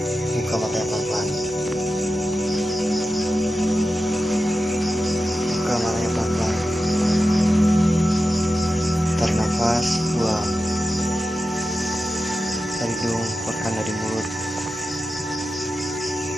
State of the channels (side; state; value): both; normal; correlation 0.92